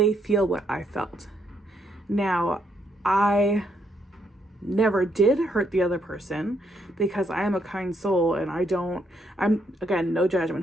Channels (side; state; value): both; normal; correlation 0.74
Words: feel what I felt. Now, I never did hurt the other person because I am a kind soul, and I'm again, no